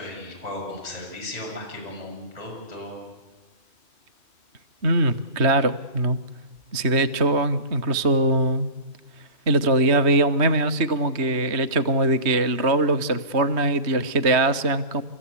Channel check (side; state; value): left; late; 3.1 ms